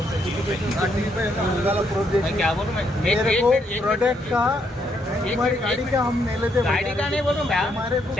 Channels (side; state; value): both; normal; correlation 0.74